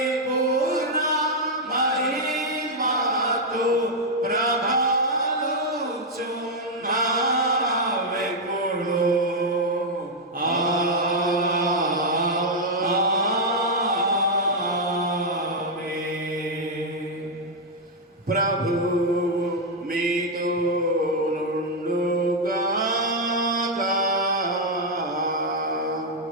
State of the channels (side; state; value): both; normal; correlation -0.01